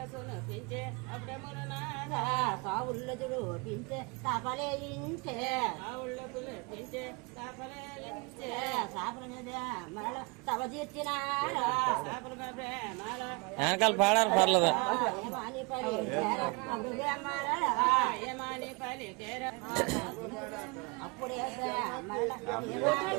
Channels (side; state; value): left; quieter; 30.1 dB